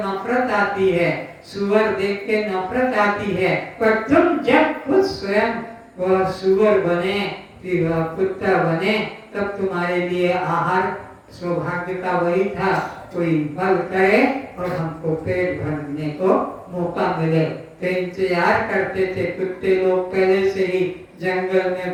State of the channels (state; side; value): identical; both; correlation 1.00